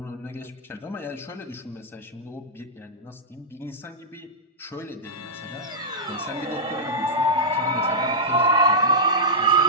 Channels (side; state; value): both; normal; correlation -0.10